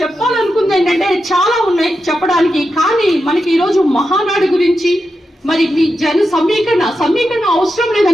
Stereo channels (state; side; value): normal; both; correlation 0.88